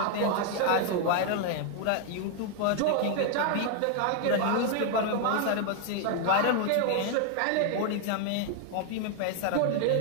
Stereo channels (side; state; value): both; different; correlation 0.00